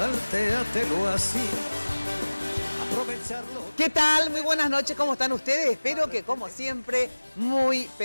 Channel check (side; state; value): both; inverted; correlation -1.00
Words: así, aprovecharlo. ¿Qué tal? Muy buenas noches, ¿cómo están ustedes? Espero que como siempre, muy,